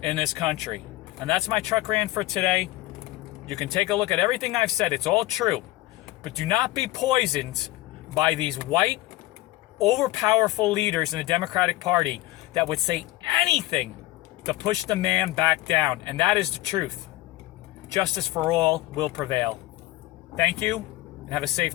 in this country. And that's my truck rant for today. You can take a look at everything I've said. It's all true. But do not be poisoned by these white, overpowerful leaders in the Democratic Party that would say anything to push the man back down. And that is the truth. Justice for all will prevail. Thank you, and have a safe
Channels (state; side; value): quieter; right; 18.0 dB